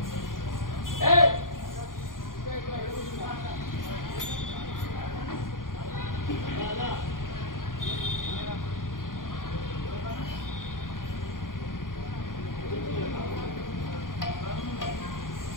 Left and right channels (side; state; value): right; late; 0.90 ms